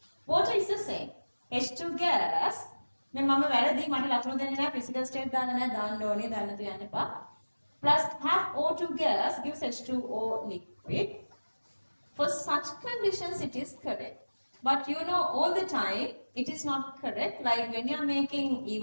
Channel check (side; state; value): both; inverted; correlation -1.00